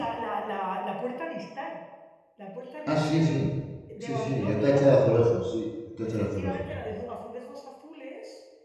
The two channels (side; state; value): both; identical; correlation 1.00